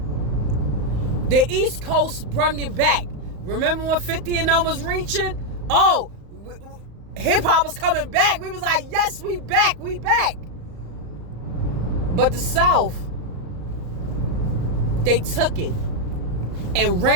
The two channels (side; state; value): left; late; 34 ms